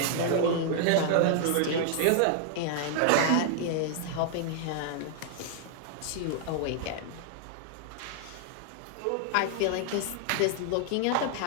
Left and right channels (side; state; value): both; different; correlation 0.00